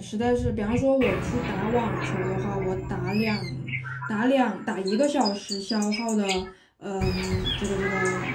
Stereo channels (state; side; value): identical; both; correlation 1.00